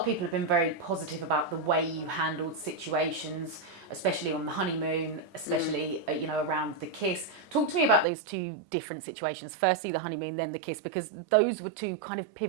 people have been very positive about the way you handled situations, especially on the honeymoon, especially around the kiss. Talk to me about those two different situations. Firstly, the honeymoon, then the kiss, because those were two kind of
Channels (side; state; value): left; drops out; at 8.1 s